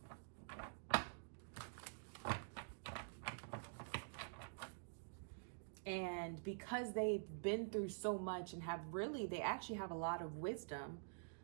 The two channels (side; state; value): left; silent; digital silence